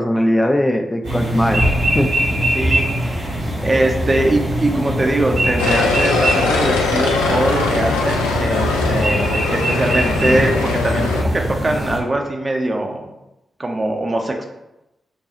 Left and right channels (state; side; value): normal; both; correlation 0.84